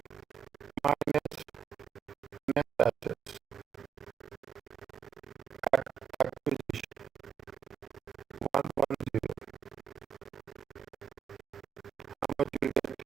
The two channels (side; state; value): left; quieter; 7.7 dB